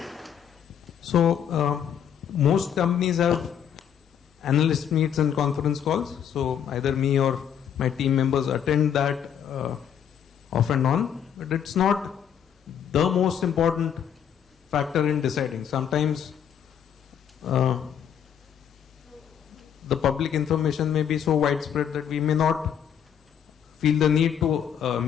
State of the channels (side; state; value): right; quieter; 8.7 dB